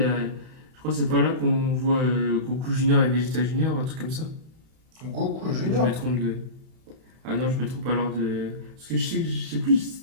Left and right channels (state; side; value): late; left; 31 ms